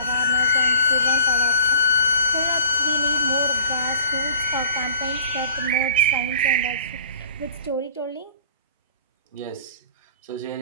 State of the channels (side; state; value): both; inverted; correlation -0.46